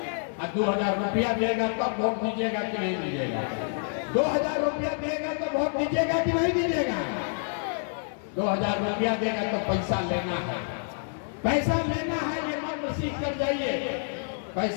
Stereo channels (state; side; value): silent; right; digital silence